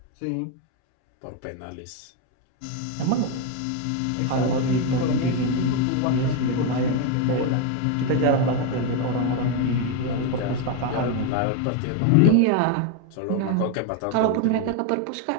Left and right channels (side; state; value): both; different; correlation 0.02